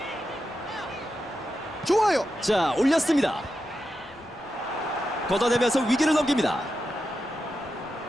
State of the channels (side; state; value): left; noise; rumble, 26 dB below the sound